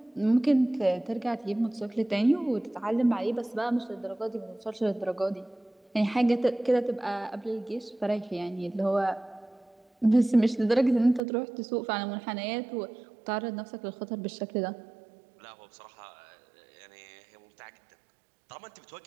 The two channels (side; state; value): left; drops out; at 11.2 s